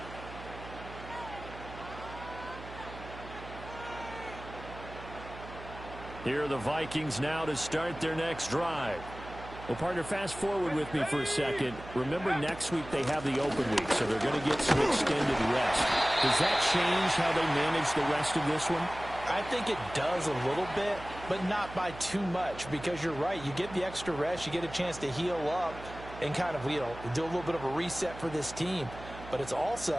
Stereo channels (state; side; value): noise; right; hum, 14 dB below the sound